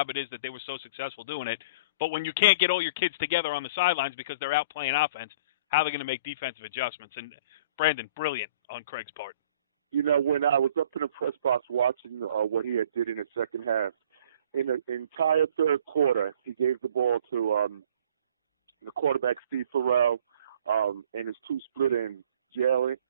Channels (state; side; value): inverted; both; correlation -0.50